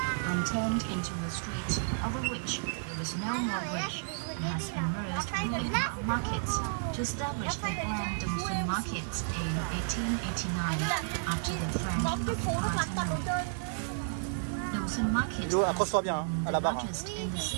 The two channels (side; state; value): left; silent; digital silence